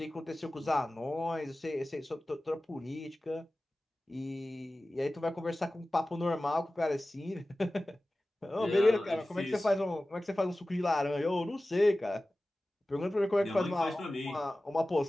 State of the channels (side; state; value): both; normal; correlation 0.96